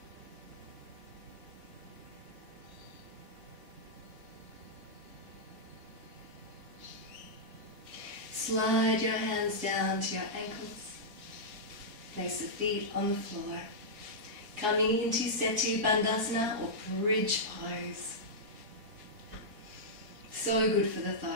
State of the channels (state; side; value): late; left; 4.8 ms